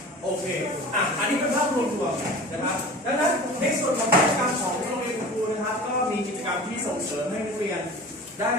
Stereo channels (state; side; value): normal; both; correlation 0.38